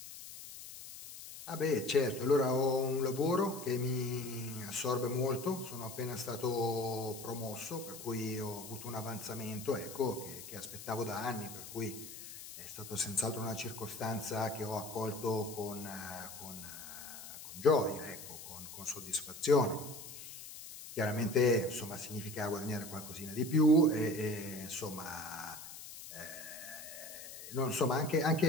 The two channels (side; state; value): left; noise; hiss, 12 dB below the sound